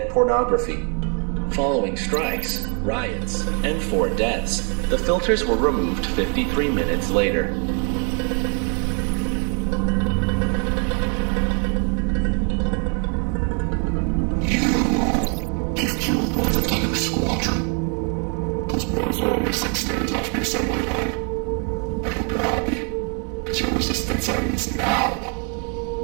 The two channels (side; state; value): left; quieter; 38.1 dB